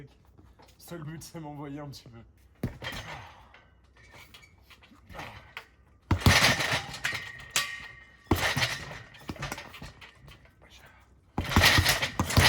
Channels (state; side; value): identical; both; correlation 1.00